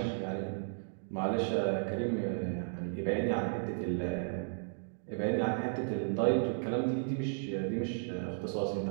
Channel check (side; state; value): left; silent; digital silence